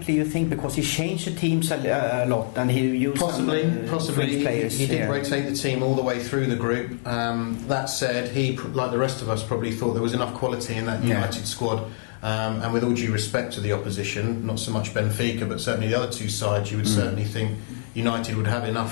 you think? Because he changed the teams a lot, and he used possibly players. He did rotate the team all the way through the group. That said, he, like the rest of us, probably thought there was enough quality in that United squad. And with all due respect to the opposition, not so much Benfica, but certainly the other two sides, you would certainly think United would have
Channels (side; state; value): right; silent; digital silence